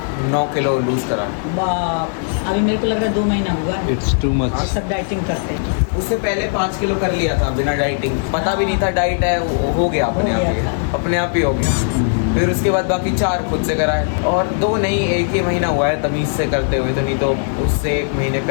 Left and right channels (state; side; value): silent; right; 67 dB below the other